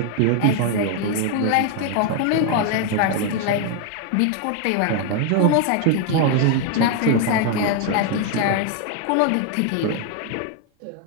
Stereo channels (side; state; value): both; different; correlation 0.01